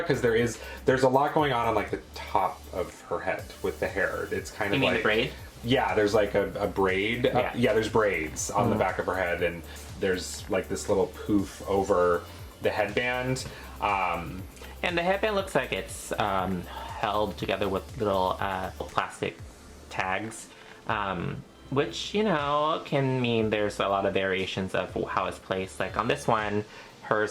there's a lot going on like the top of her head with the hair. It's kind of You mean like the braid? Yeah, there's like a braid. Yeah. There's braids on the back of her head, and there's like this little poof over the headband. And the headband looks like it's held together with little plastic tags, which, you know, can mean there's a lot of variations of how it's placed. Like on this one,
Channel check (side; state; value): both; identical; correlation 1.00